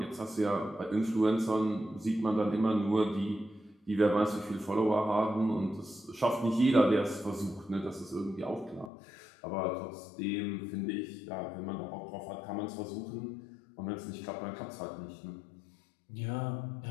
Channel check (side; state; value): right; drops out; at 8.9 s